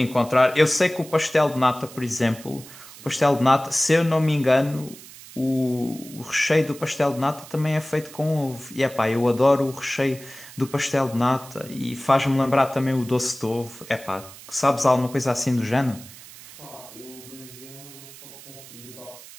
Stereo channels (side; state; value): right; noise; hiss, 18 dB below the sound